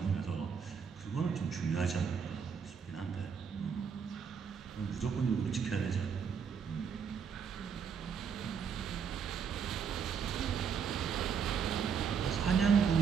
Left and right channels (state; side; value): quieter; left; 6.8 dB